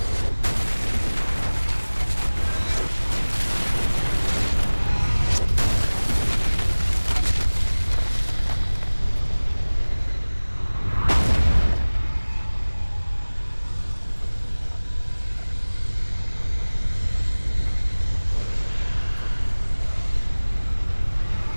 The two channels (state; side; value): inverted; both; correlation -1.00